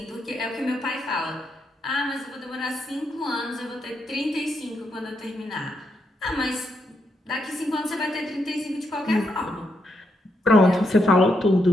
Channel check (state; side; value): normal; both; correlation 0.80